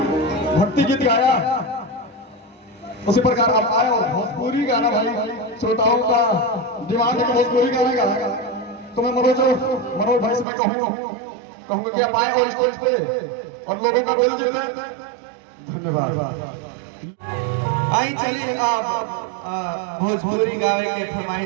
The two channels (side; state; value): left; drops out; at 10.5 s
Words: भक्ति गीत गाया, उसी प्रकार अब आए और भोजपुरी गाना भाई श्रोताओं का डिमांड है कि भोजपुरी गाना गाएगा। तो मैं मनोज भाई से मैं कहूँगा कि आप आए और स्टेज पे और लोगों का दिल जीते। धन्यवाद। आई चलिए अब भोजपुरी गावे के